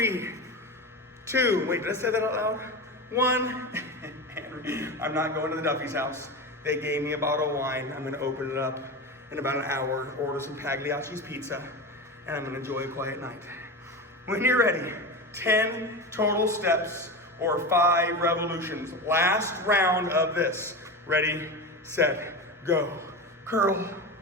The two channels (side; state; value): both; normal; correlation 0.23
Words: 2. Wait, did I say that out loud? 1. I'm not going to the Duffy's house. They gave me a bottle of wine. I'm going to open it up in about an hour, order some Pagliacci's pizza, and I'm going to enjoy a quiet night. When you're ready, 10 total steps or 5 revolutions. Last round of this. Ready, set, go. Curl,